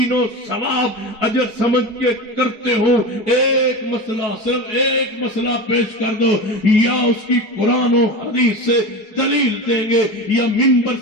و ثواب اجر سمجھ کے کرتے ہو۔ ایک مسئلہ، صرف ایک مسئلہ پیش کر دو، یا اس کی قرآن و حدیث سے دلیل دیں گے یا منبر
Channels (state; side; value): late; right; 4.7 ms